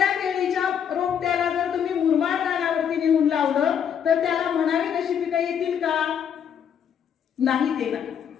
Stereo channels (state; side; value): quieter; right; 8.3 dB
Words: केळीच्या रोपट्याला जर तुम्ही मुरमाड रानावरती नेऊन लावलं तर त्याला म्हणावी तशी पिकं येतील का? नाही, ते नाही.